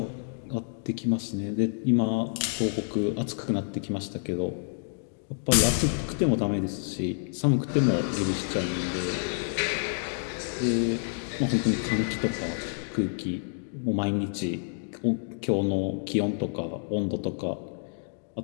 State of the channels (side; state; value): right; silent; digital silence